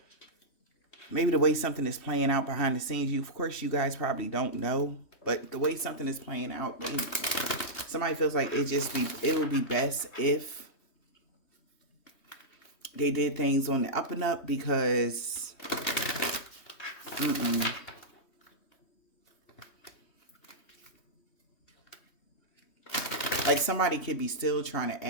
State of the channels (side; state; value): right; late; 3.1 ms